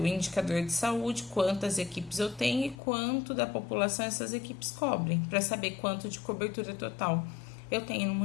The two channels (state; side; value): drops out; right; at 2.8 s